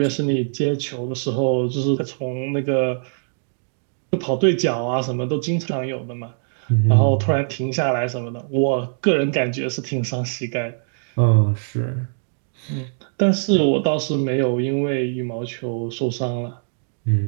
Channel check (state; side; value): silent; left; digital silence